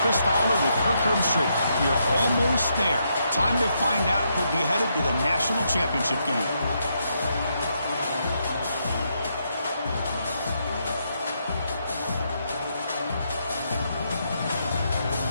Chris Fowler with Kirk Herbstreit. We are almost there. Time to find out who'll be headed to the national championship game.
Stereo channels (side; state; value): both; inverted; correlation -0.78